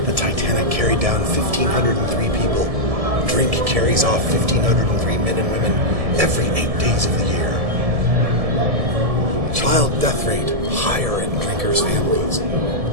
The Titanic carried down 1,503 people. Drink carries off 1,503 men and women every 8 days of the year. Child death rate higher in drinkers' families.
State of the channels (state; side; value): late; left; 1.7 ms